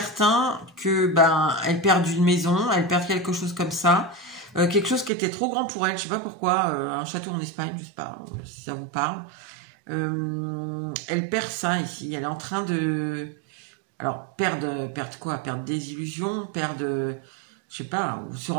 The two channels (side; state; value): left; drops out; at 5.1 s